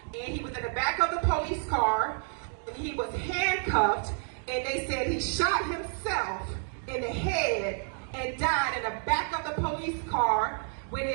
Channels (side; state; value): left; silent; 58 dB below the other